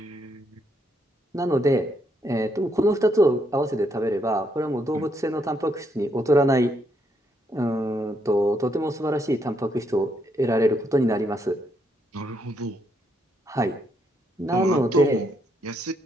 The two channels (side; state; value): both; normal; correlation 0.75